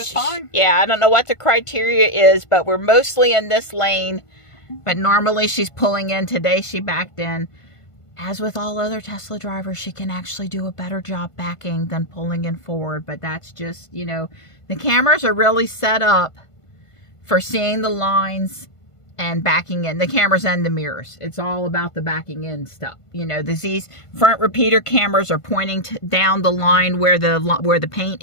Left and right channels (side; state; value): right; late; 1.5 ms